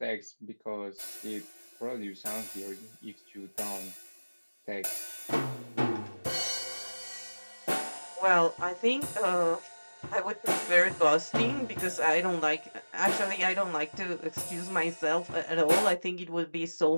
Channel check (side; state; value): both; inverted; correlation -1.00